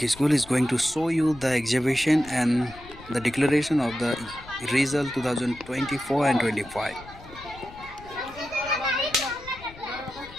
School is going to show you the exhibition and the declaration of the result 2024 and 25.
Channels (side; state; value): left; noise; rumble, 19 dB below the sound